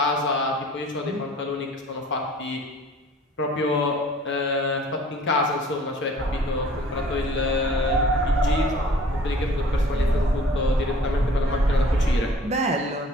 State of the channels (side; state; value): both; normal; correlation 0.50